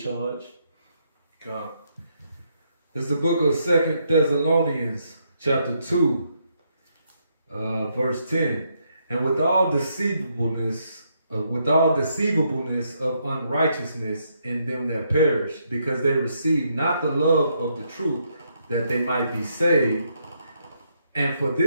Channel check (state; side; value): inverted; both; correlation -0.76